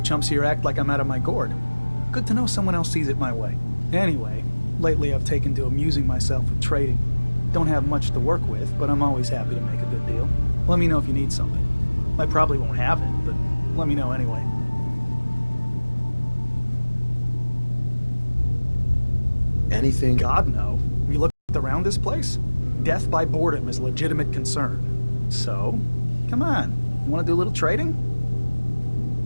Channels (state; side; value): inverted; both; correlation -1.00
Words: here act like I'm out of my gourd. Good to know someone else sees it my way. Anyway, lately I've taken to amusing myself with trading. Don't have much to work with, but I'm always happy to make a good deal. Let me know if you need something. I probably won't have it, but let me know anyway. Anything? God, no. You looked around this place? Death by boredom is a legitimate concern. So, come on. You want to do a little trading?